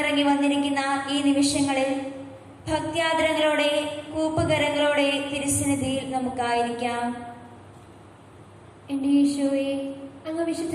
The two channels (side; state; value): both; identical; correlation 1.00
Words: വന്നിരിക്കുന്ന ഈ നിമിഷങ്ങളിൽ ഭക്ത്യാദരങ്ങളോടെ, കൂപ്പുകരങ്ങളോടെ തിരുസന്നിധിയിൽ നമുക്കായിരിക്കാം. എന്റെ ഈശോയെ, അങ്ങ് വിശുദ്ധ